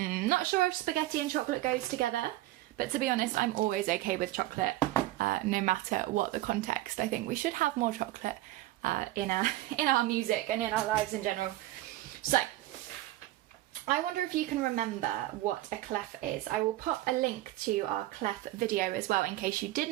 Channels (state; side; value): quieter; left; 16.3 dB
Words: sure if spaghetti and chocolate goes together, but to be honest, I'm always okay with chocolate, no matter what the context. I think we should have more chocolate in our music and in our lives in general. So, I wonder if you can remember what a clef is. I will pop a link to our clef video as well in case you